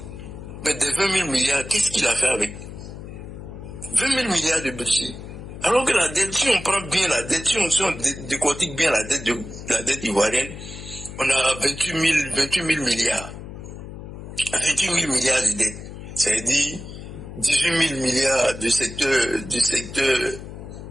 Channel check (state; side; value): noise; left; hum, 12 dB below the sound